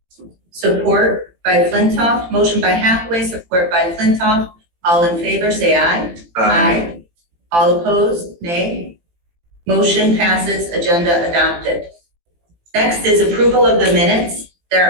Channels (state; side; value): late; left; 18 ms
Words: Support by Flintoff, motion by Hathaway, support by Flintoff. All in favor, say aye. Aye. All opposed, nay. Motion passes, agenda adopted. Next is approval of the minutes.